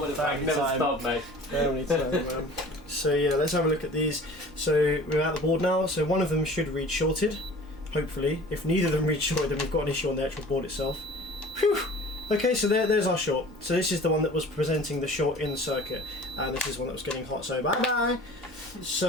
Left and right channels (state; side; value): normal; both; correlation 0.44